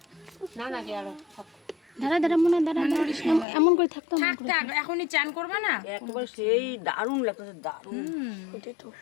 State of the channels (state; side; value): drops out; right; at 3.5 s